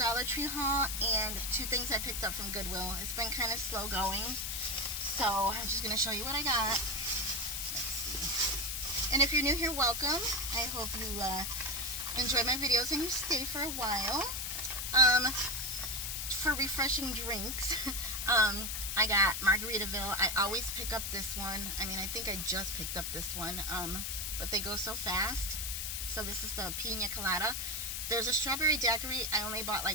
Tree haul and two things I picked up from Goodwill. It's been kind of slow going, so I'm just going to show you what I got. Let's see. And if you're new here, welcome. I hope you enjoy my videos and you stay for a while. For refreshing drinks, I got Margaritaville. I always pick up this one. I mean, I think I just picked up this one, but they go so fast. So this is the Pina Colada. There's a strawberry daiquiri I only bought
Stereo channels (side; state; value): left; noise; hiss, 3 dB below the sound